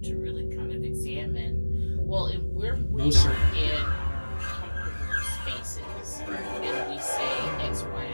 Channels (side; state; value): both; inverted; correlation -1.00